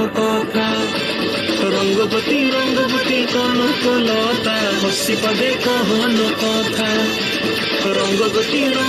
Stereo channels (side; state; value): both; identical; correlation 1.00